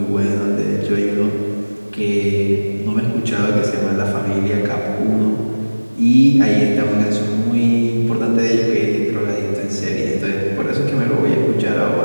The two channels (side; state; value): both; inverted; correlation -1.00